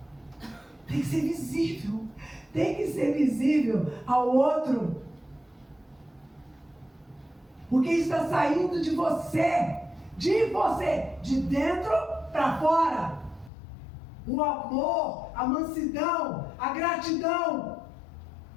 Tem que ser visível. Tem que ser visível ao outro. Porque isso está saindo de você. De você. De dentro para fora. O amor, a mansidão, a gratidão.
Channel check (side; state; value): right; drops out; at 13.5 s